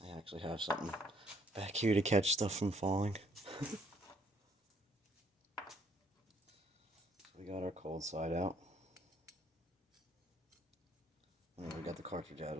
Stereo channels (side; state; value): both; normal; correlation 0.66